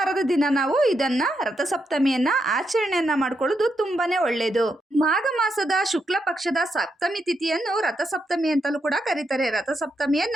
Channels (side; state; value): both; normal; correlation 0.82